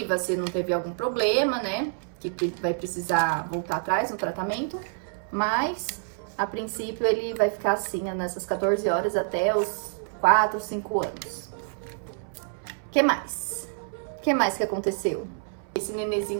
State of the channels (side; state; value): left; silent; 60 dB below the other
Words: se não teve algum problema, né? Que vai precisar voltar atrás no tratamento. Mas, a princípio, ele vai ficar assim nessas 14 horas até os 4, 5 anos. O que mais? O que mais que aconteceu? Esse